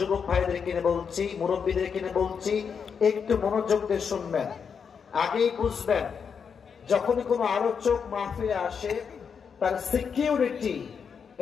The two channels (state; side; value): quieter; right; 6.5 dB